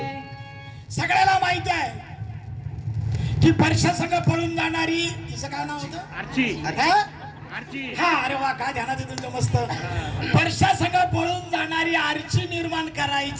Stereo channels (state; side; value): identical; both; correlation 1.00